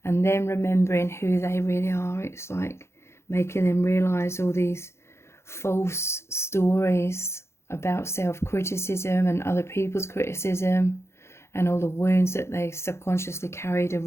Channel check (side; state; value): right; late; 0.13 ms